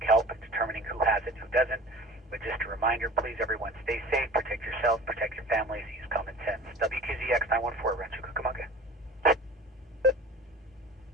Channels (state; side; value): normal; both; correlation 0.40